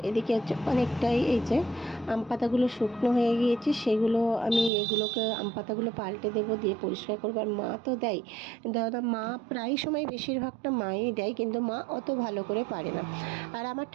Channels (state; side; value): drops out; left; at 4.7 s